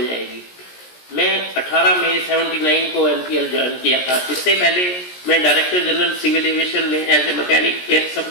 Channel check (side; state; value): right; late; 17 ms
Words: जाएगी। मैं 18 मई 79 को एनपीएल ज्वाइन किया था। इससे पहले मैं डायरेक्टर जनरल सिविल एविएशन में एज ए मैकेनिक एक